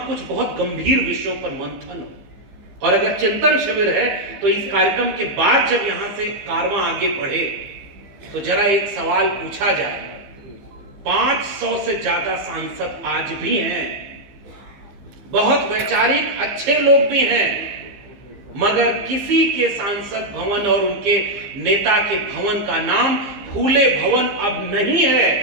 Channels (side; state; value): left; late; 15 ms